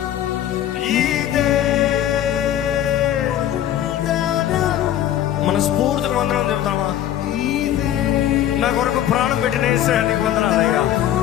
ఇదే వందనం. మనస్ఫూర్తిగా వందనం చెప్తామా? నా కొరకు ప్రాణం పెట్టిన యేసయ్యా నీకు వందనాలయ్యా.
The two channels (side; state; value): right; quieter; 11.5 dB